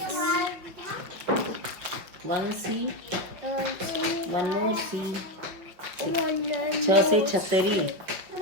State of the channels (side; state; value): left; late; 5.6 ms